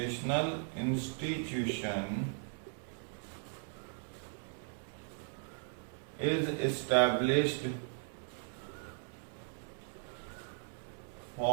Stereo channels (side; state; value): left; silent; 53 dB below the other